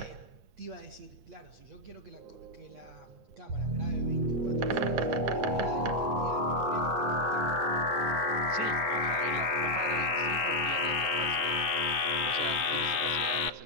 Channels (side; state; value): left; late; 8.9 ms